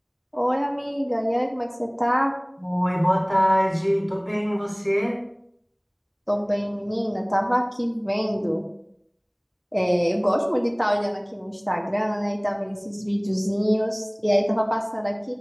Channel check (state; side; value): identical; both; correlation 1.00